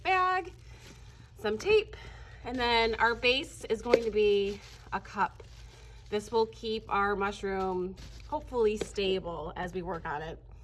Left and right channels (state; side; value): identical; both; correlation 1.00